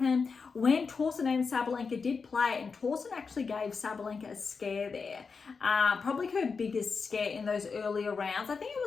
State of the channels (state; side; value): quieter; right; 5.1 dB